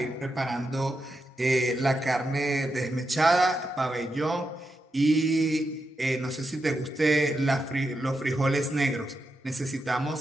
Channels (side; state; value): both; normal; correlation 0.86